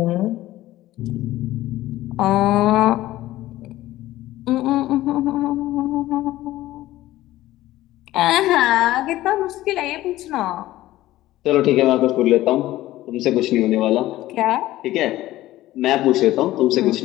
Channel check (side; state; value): right; quieter; 15.7 dB